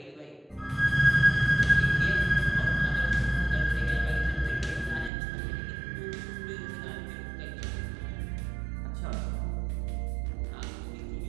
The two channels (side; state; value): left; drops out; at 5.1 s